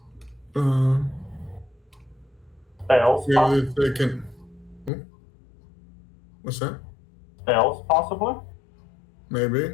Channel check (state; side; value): drops out; right; at 4.9 s